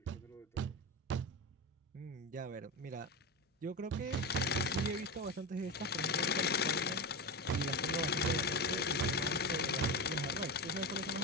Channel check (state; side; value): normal; both; correlation 0.19